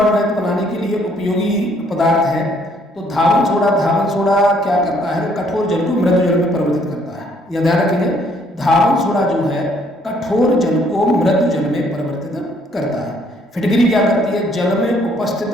रहित बनाने के लिए उपयोगी पदार्थ है। तो धावन सोडा क्या करता है, कठोर जल को मृदु जल में परिवर्तित करता है। यह ध्यान रखेंगे, धावन सोडा जो है कठोर जल को मृदु जल में परिवर्तित करता है। फिटकरी क्या करती है, जल में उपस्थित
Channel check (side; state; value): both; normal; correlation 0.65